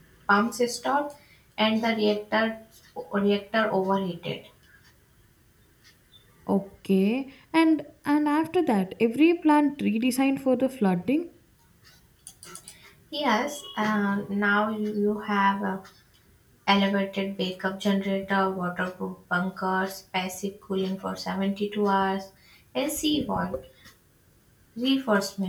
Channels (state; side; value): identical; both; correlation 1.00